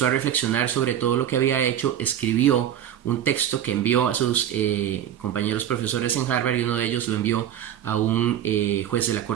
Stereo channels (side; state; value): left; quieter; 10.5 dB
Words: a reflexionar sobre todo lo que había hecho, escribió un texto que envió a sus compañeros profesores en Harvard y uno de ellos lo envió a un juez de la